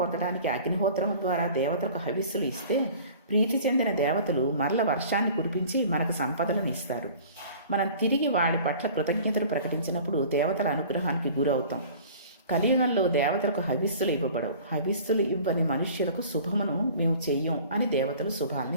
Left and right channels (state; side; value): inverted; both; correlation -0.45